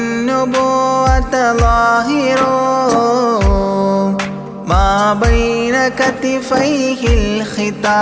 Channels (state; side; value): identical; both; correlation 1.00